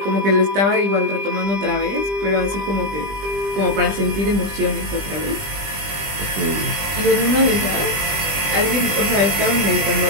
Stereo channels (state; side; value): late; left; 20 ms